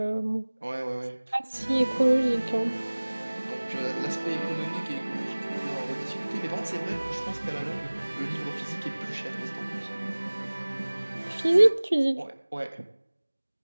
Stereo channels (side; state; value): both; inverted; correlation -1.00